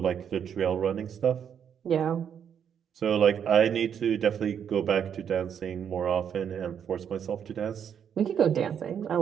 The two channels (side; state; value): left; quieter; 8.2 dB